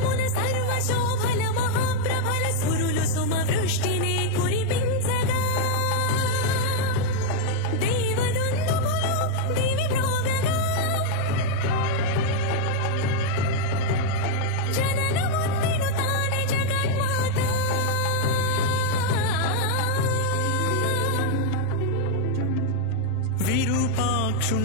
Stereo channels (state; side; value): different; both; correlation 0.00